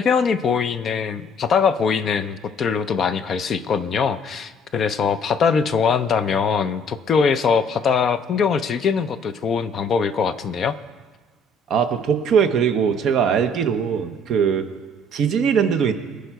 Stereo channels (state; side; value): normal; both; correlation 0.58